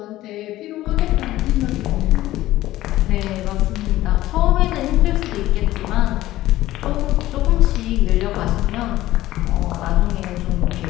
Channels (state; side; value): quieter; right; 15.6 dB